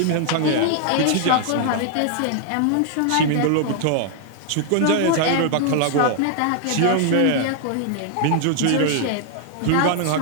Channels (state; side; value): different; both; correlation 0.00